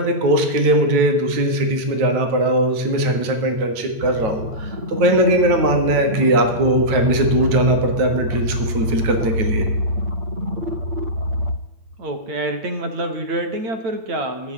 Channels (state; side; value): late; left; 9.2 ms